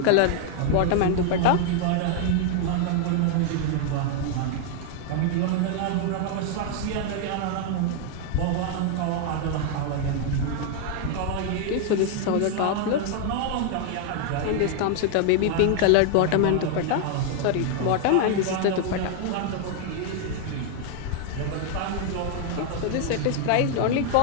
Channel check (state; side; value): different; both; correlation 0.00